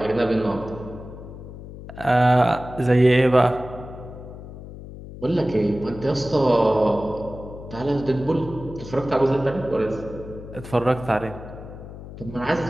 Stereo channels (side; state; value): left; noise; hum, 13 dB below the sound